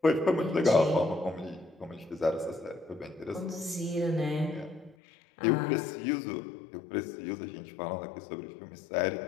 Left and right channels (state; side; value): drops out; right; at 5.0 s